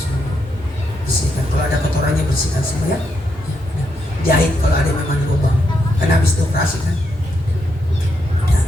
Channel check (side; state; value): both; normal; correlation 0.81